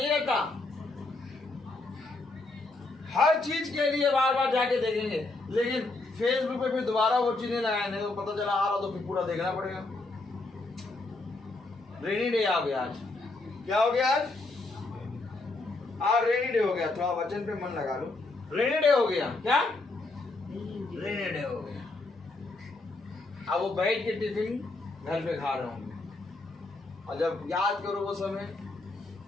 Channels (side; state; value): right; quieter; 3.2 dB